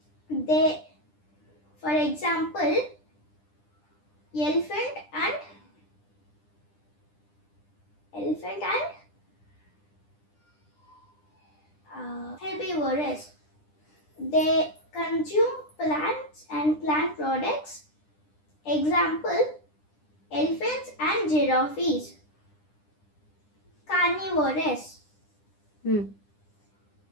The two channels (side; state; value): right; late; 9.9 ms